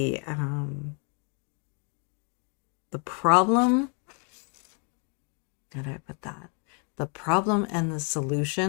problem, how do I put that? The problem and the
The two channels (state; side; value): quieter; right; 37.7 dB